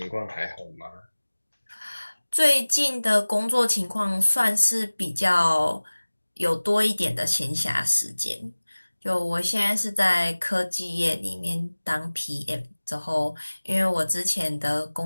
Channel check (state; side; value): inverted; both; correlation -1.00